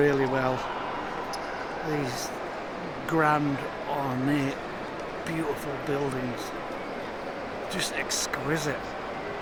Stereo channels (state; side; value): identical; both; correlation 1.00